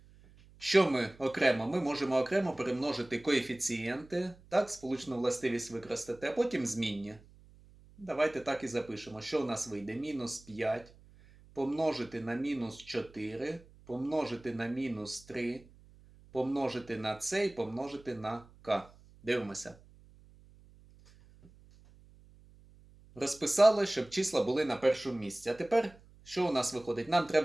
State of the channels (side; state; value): right; noise; hum, 24 dB below the sound